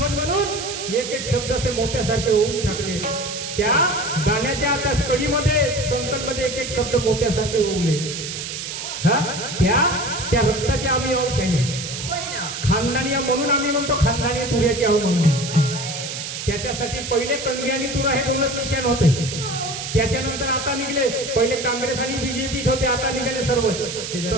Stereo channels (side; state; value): right; noise; hiss, 6 dB below the sound